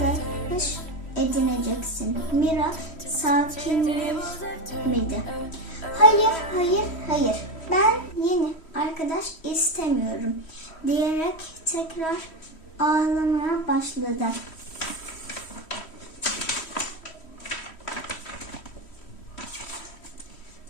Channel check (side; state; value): right; late; 3.1 ms